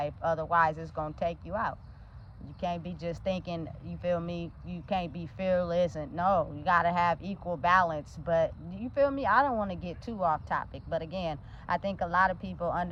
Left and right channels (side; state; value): both; identical; correlation 1.00